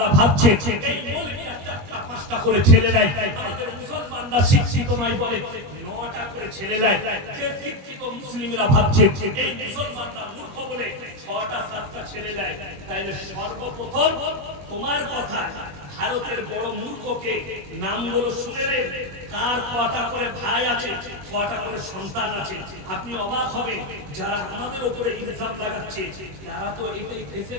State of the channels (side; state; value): left; late; 21 ms